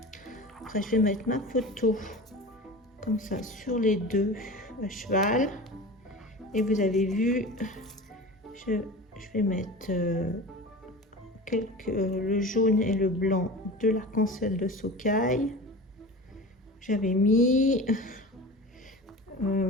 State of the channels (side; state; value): both; normal; correlation 0.33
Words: Après je vais mettre ma photo comme ça sur les 2 à cheval. Et vous avez vu, je vais mettre le jaune et le blanc de l'arc-en-ciel de Sookaï. J'avais mis